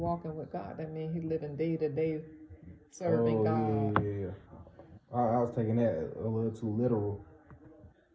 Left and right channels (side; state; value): both; identical; correlation 1.00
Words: with God. That means he living day to day serving God. Yeah. I was taking that a little too literal.